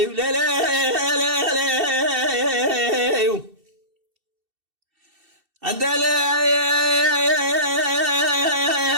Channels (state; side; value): late; left; 2.7 ms